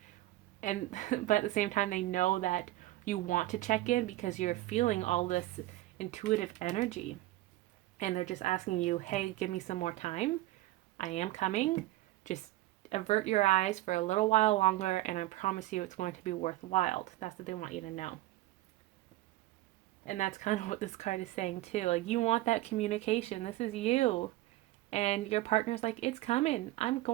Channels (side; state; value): left; quieter; 17.1 dB